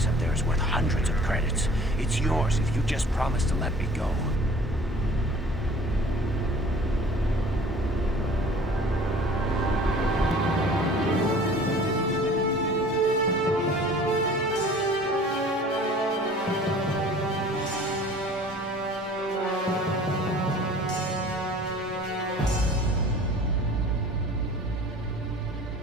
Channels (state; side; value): normal; both; correlation 0.48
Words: up there is worth hundreds of credits. It's yours if you just promise to let me go.